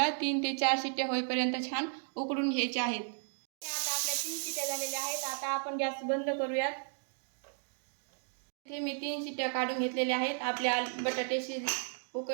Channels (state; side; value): silent; left; 55 dB below the other